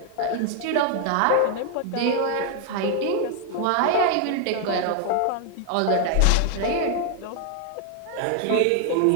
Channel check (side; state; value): both; different; correlation 0.00